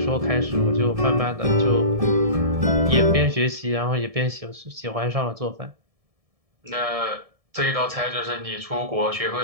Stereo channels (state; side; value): late; left; 1.7 ms